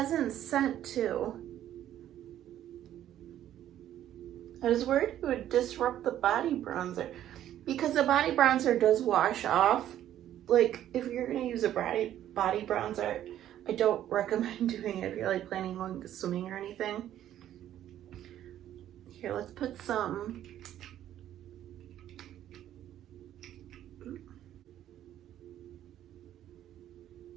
scent too. I was worried it would disrupt the body bronzer, because the body bronzer does wash off. Like, if you're gonna use a body bronzer, I don't recommend doing it if you're like planning on swimming or anything. Here, let's put some.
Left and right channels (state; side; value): quieter; left; 11.7 dB